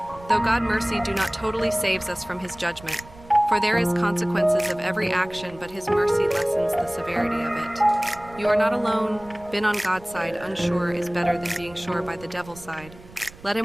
Though God's mercy do not totally saves us from His judgment, for there is consequences of every action, but His mercy lessens the severity of it. You are not alone. Been on God's side, unsure is better than being sure by the devil's side. Let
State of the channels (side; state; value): right; noise; rumble, 20 dB below the sound